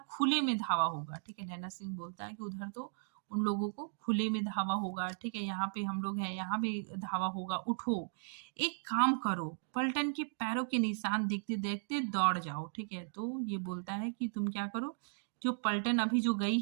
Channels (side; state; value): left; silent; digital silence